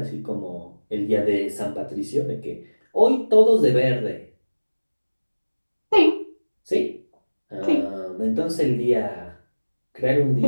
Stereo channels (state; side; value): inverted; both; correlation -1.00